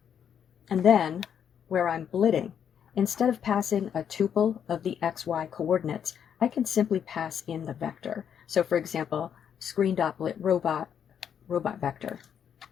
And then, where I'm blitting, instead of passing a tuple of the xy coordinates, I can simply pass in the vector. So for example, screen.blit robot vector.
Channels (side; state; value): right; quieter; 8.4 dB